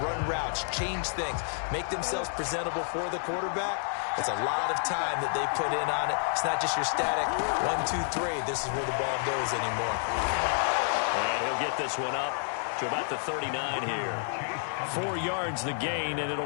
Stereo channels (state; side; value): silent; right; digital silence